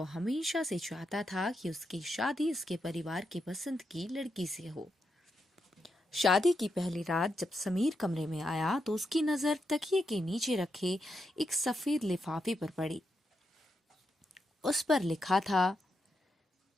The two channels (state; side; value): normal; both; correlation 0.84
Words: हमेशा से चाहता था कि उसकी शादी उसके परिवार की पसंद की लड़की से हो। शादी की पहली रात जब समीर कमरे में आया तो उसकी नजर तकिए के नीचे रखे एक सफेद लिफाफे पर पड़ी। उस पर लिखा था,